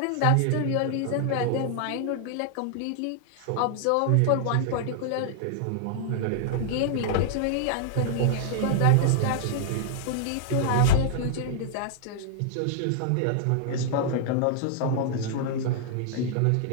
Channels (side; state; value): both; different; correlation -0.01